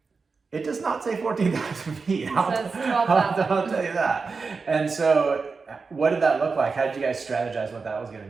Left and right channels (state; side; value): quieter; left; 4.6 dB